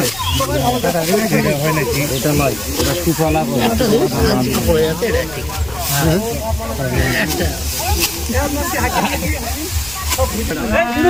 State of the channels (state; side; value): noise; left; rumble, 19 dB below the sound